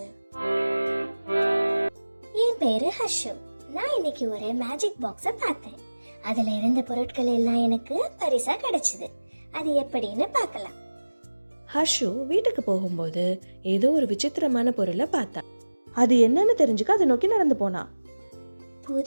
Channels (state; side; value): inverted; both; correlation -1.00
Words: என் பேரு ஹர்ஷு. நான் இன்னைக்கு ஒரு மேஜிக் பாக்ஸை பார்த்தேன். அதுல இருந்த பொருட்கள் எல்லாம் எனக்கு பரிசா கிடைச்சது. அது எப்படின்னு பார்க்கலாம். ஹர்ஷு வீட்டுக்கு போகும்போது ஏதோ ஒரு விசித்திரமான பொருளை பார்த்தா. அது என்னன்னு தெரிஞ்சுக்க அதை நோக்கி நடந்து போனா.